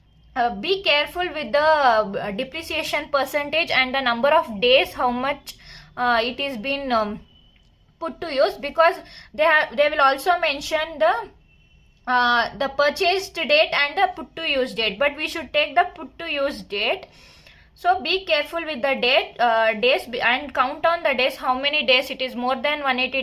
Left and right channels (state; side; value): identical; both; correlation 1.00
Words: be careful with the depreciation percentage and the number of days how much it is been put to use, because they will also mention the purchased date and the put to use date, but we should take the put to use date. So be careful with the days and count on the days, how many days it is, more than 180